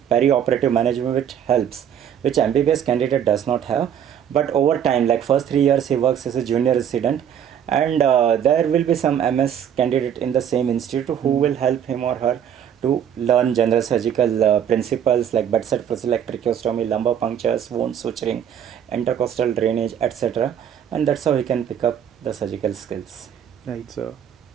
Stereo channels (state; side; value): quieter; left; 9.1 dB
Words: perioperative management, which helps, which MBBS candidate does not have. But over time, like first 3 years, he works as a junior resident, and there will be some MS candidate in the same institute who will help him or her to learn general surgical principles like bedside procedure like tracheostomy, lumbar punctures, wound suturing, intercostal drainage, etc. And that's how he can pick up the surgical skills. Right, sir.